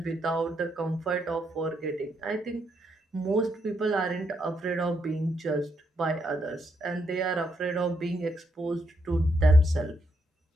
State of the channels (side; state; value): both; normal; correlation 0.78